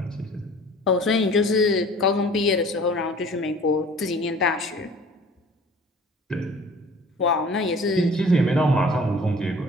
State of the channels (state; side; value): normal; both; correlation 0.48